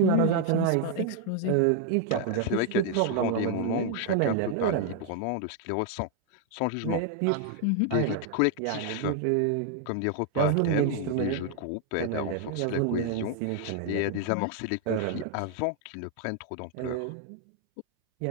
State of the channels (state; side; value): different; both; correlation 0.00